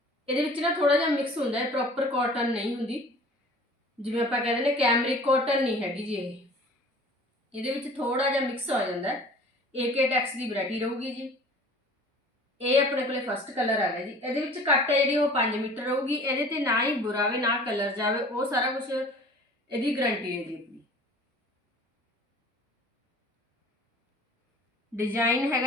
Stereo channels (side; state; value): both; normal; correlation 0.46